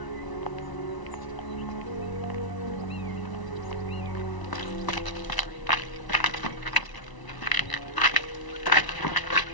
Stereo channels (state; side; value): late; right; 1.0 ms